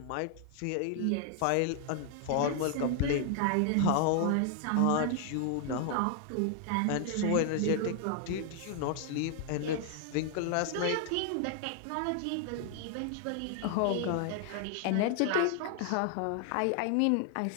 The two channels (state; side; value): different; both; correlation 0.00